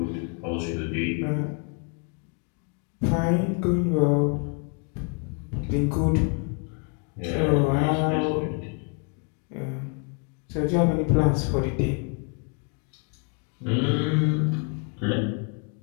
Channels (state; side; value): quieter; right; 37.5 dB